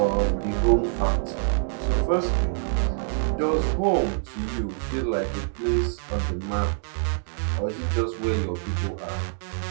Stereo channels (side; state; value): left; silent; 61 dB below the other